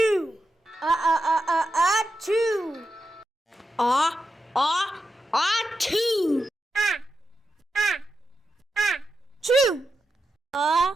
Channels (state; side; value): normal; both; correlation 0.88